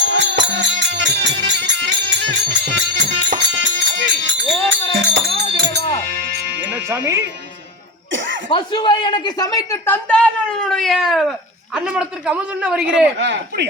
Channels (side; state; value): both; normal; correlation 0.21